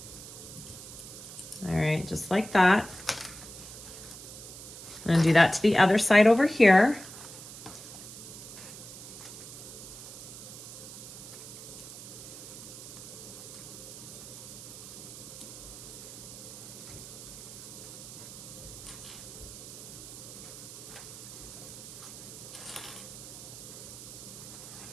All right, just like that. I'm gonna do that to the other side over here.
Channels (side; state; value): right; noise; hiss, 13 dB below the sound